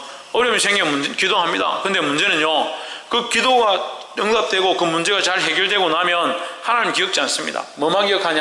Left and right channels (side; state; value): both; identical; correlation 1.00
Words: 어려움이 생기면 기도합니다. 근데 문제는요, 그 기도가 응답되고 그 문제가 잘 해결되고 나면 하나님 기억지 않습니다. 뭐만